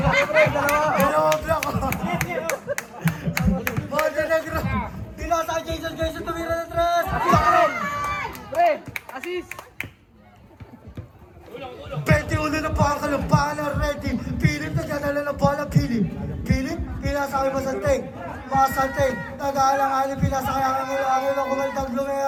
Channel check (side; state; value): both; identical; correlation 1.00